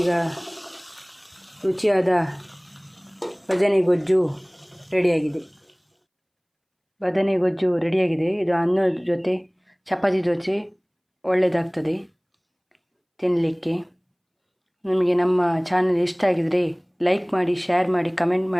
ಈಗ ರುಚಿಯಾದ ಬದನೆ ಗೊಜ್ಜು ರೆಡಿಯಾಗಿದೆ. ಇದು ಅನ್ನದ ಜೊತೆ, ಚಪಾತಿ ಜೊತೆ ಒಳ್ಳೆಯದಾಗ್ತದೆ ತಿನ್ನಲಿಕ್ಕೆ. ನಿಮಗೆ ನಮ್ಮ ಚಾನಲ್ ಇಷ್ಟ ಆಗಿದರೆ ಲೈಕ್ ಮಾಡಿ, ಶೇರ್ ಮಾಡಿ, ಕಮೆಂಟ್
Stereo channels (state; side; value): identical; both; correlation 1.00